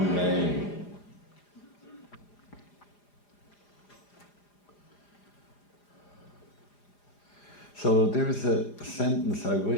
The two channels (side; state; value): right; late; 4.9 ms